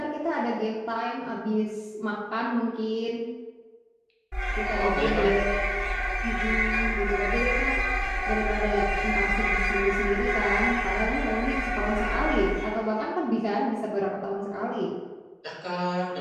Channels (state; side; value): identical; both; correlation 1.00